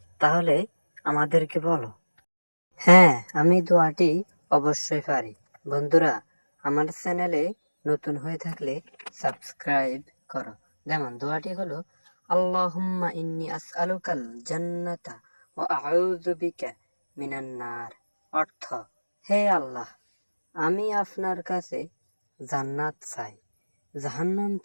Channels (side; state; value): both; inverted; correlation -1.00